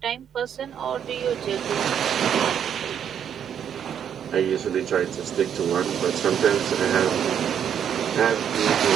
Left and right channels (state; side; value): quieter; left; 8.7 dB